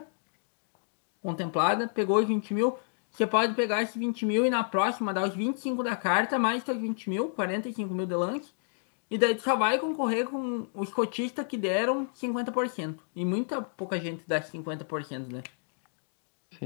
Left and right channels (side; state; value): right; silent; digital silence